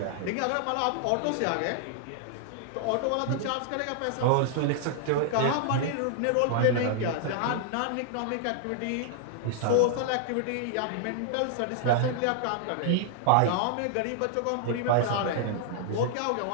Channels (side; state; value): both; different; correlation -0.01